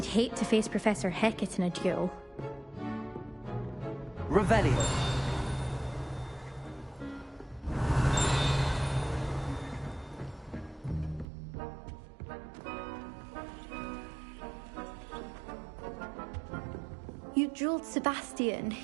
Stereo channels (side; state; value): left; drops out; at 11.2 s